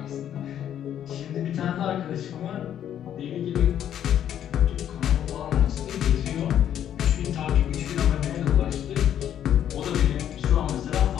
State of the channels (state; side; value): quieter; right; 10.2 dB